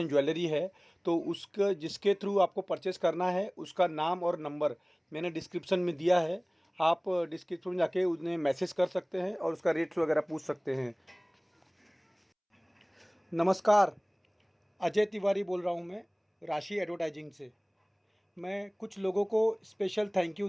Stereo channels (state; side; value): identical; both; correlation 1.00